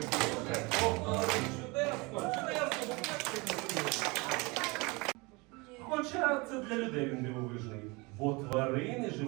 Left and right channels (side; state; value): left; quieter; 26.3 dB